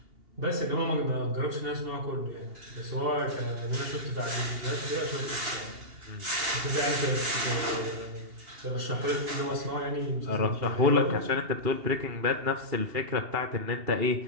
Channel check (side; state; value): left; late; 2.7 ms